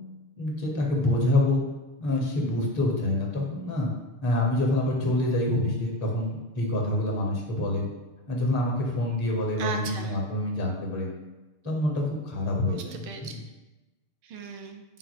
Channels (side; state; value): left; late; 6.7 ms